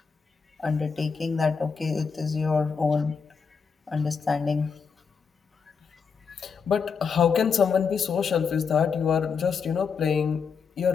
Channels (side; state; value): right; quieter; 5.8 dB